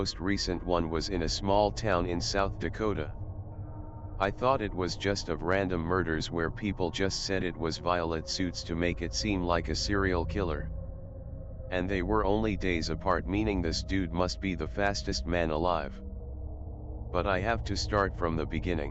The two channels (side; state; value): both; identical; correlation 1.00